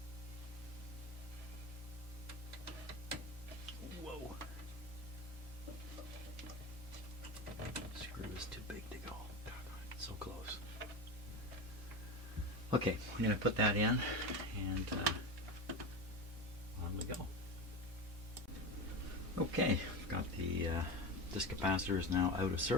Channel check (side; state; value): both; normal; correlation 0.23